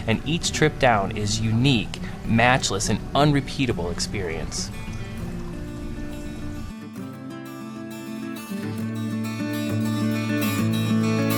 and each trip down is unique, matchless, and unrepeatable experience.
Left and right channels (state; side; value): identical; both; correlation 1.00